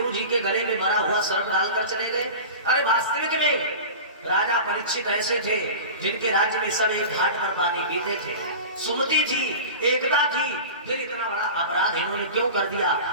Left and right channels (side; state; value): both; inverted; correlation -0.32